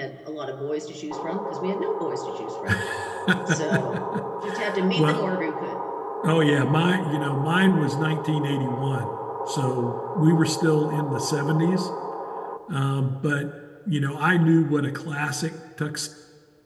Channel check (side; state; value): both; identical; correlation 1.00